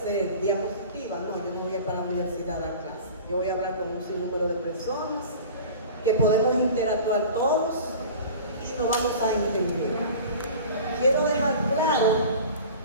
¿Diapositiva? No, yo no voy a ir para la universidad a dar clase. Yo voy a hablar con un sinnúmero de personas que podemos interactuar todos y nos vamos a entender. Quiero dejar claro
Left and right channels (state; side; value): inverted; both; correlation -0.39